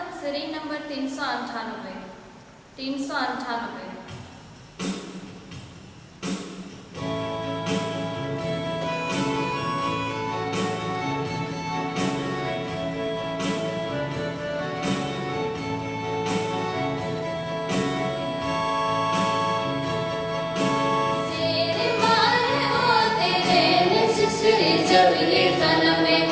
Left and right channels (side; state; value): both; identical; correlation 1.00